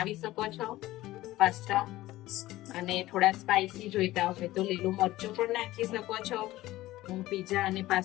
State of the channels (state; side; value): quieter; right; 16.7 dB